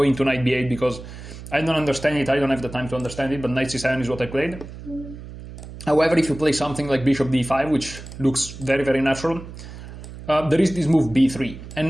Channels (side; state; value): right; noise; hum, 13 dB below the sound